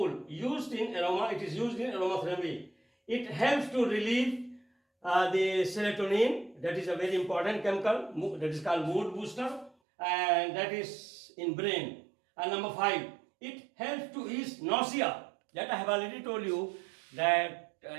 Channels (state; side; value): drops out; left; at 9.7 s